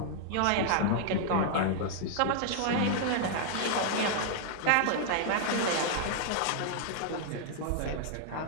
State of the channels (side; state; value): both; different; correlation 0.00